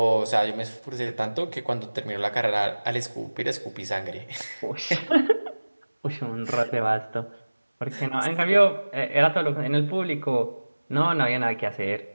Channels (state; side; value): inverted; both; correlation -1.00